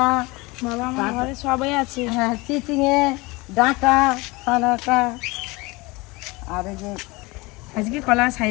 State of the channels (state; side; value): quieter; right; 24.0 dB